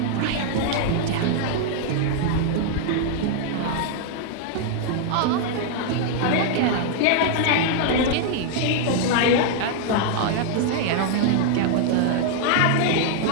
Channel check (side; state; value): both; different; correlation 0.00